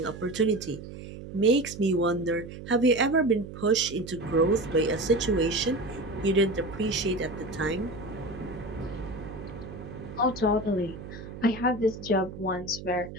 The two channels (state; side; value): noise; right; hum, 12 dB below the sound